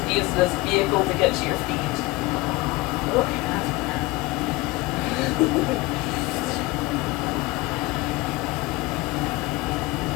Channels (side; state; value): right; quieter; 21.6 dB